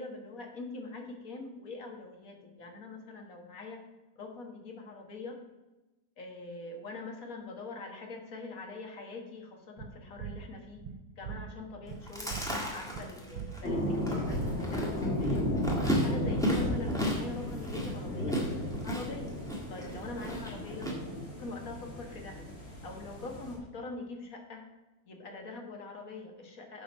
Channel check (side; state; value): both; normal; correlation 0.11